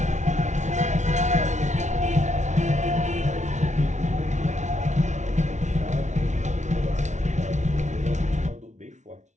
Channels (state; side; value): late; left; 0.34 ms